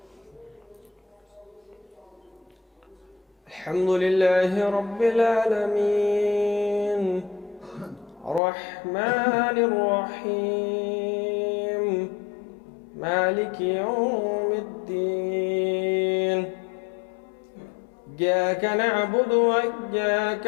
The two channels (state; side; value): drops out; right; at 8.4 s